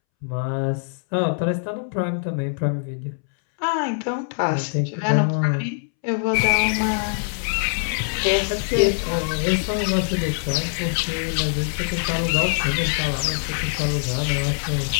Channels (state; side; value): silent; right; 63 dB below the other